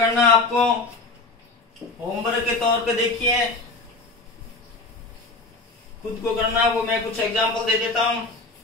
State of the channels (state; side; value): quieter; right; 3.5 dB